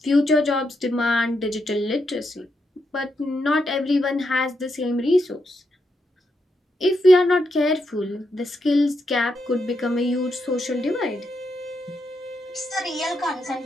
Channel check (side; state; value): both; normal; correlation 0.82